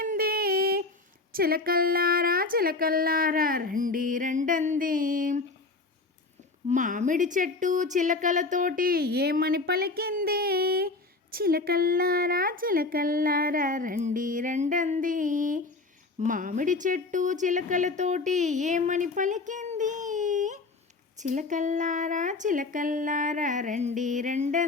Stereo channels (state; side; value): quieter; right; 3.6 dB